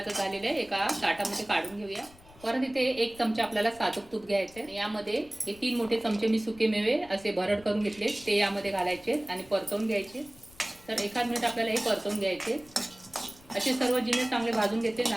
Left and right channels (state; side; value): noise; left; rumble, 24 dB below the sound